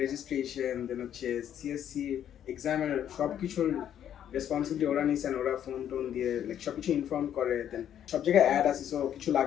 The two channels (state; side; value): quieter; right; 10.1 dB